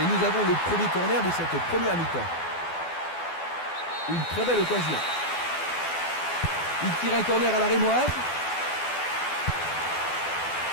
nous avons le premier corner de cette première mi-temps. Une très belle occasion. Il tire un corner à la rémoise.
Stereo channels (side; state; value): right; late; 12 ms